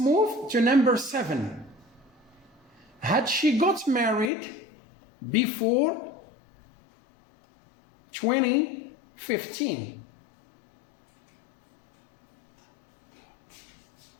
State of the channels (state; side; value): drops out; right; at 4.3 s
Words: to number 7. Had she got married before 2015?